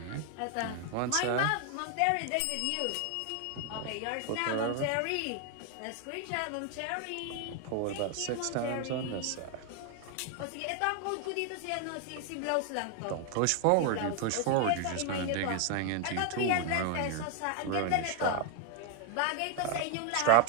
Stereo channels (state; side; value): different; both; correlation 0.00